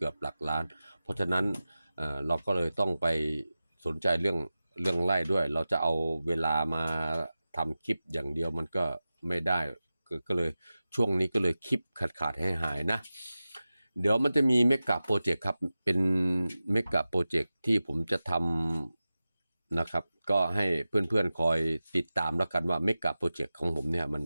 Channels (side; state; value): both; inverted; correlation -0.95